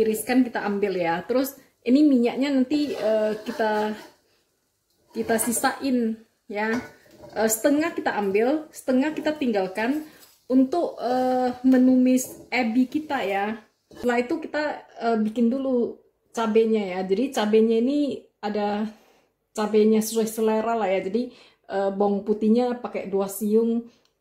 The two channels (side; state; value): both; identical; correlation 1.00